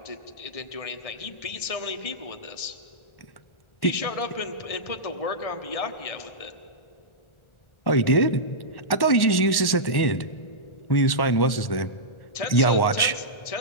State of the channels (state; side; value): late; right; 1.1 ms